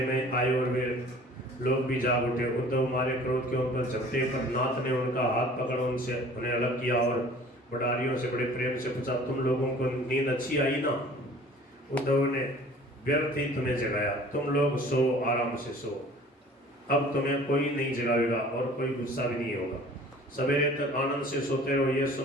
में आए और वे लोग भी जाग उठे। उद्धव मारे क्रोध के ऊपर झपटे पर नाथ ने उनका हाथ पकड़ उन्हें अलग किया और बडारियों से बड़े प्रेम से पूछा, तुम लोगों को नींद अच्छी आई ना? उद्धव ने, व्यर्थ ही तुम्हें जगाया, तुम लोग सो, आराम से सो, अब तुम्हें कोई नहीं जगाएगा और कोई गुस्सा भी नहीं होगा। सवेरे तक आनंद से सोते रहो। यह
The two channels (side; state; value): both; normal; correlation 0.48